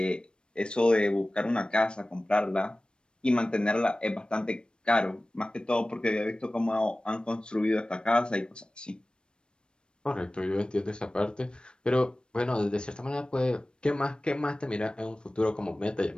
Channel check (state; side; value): late; right; 0.054 ms